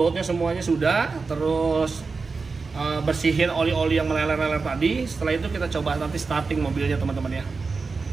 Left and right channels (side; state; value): left; quieter; 4.4 dB